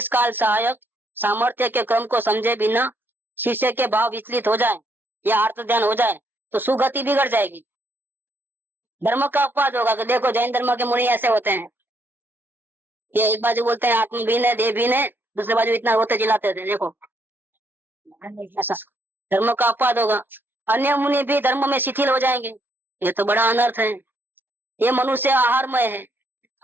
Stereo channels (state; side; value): late; left; 0.10 ms